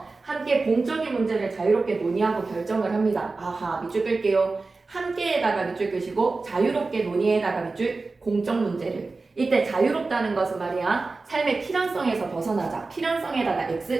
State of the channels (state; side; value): quieter; left; 3.8 dB